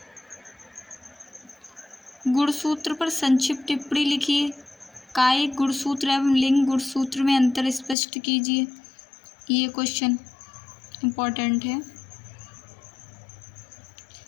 गुणसूत्र पर संक्षिप्त टिप्पणी लिखिए। कायिक गुणसूत्र एवं लिंग गुणसूत्र में अंतर स्पष्ट कीजिए। ये क्वेश्चन इम्पोर्टेंट है।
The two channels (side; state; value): right; drops out; at 8.0 s